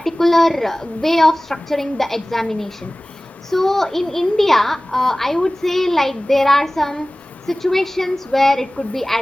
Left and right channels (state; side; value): normal; both; correlation 0.98